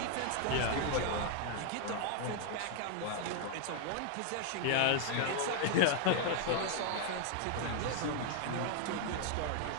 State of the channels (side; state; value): both; different; correlation -0.01